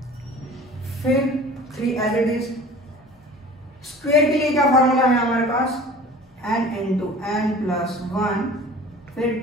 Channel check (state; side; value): normal; both; correlation 0.43